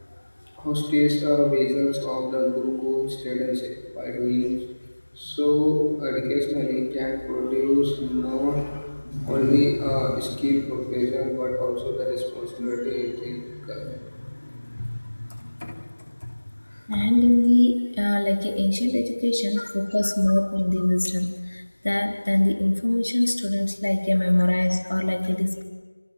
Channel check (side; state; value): both; inverted; correlation -1.00